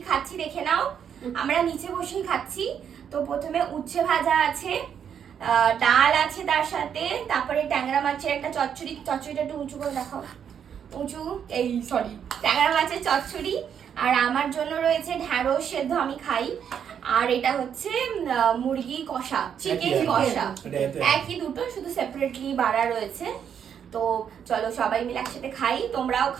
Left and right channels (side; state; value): left; quieter; 8.2 dB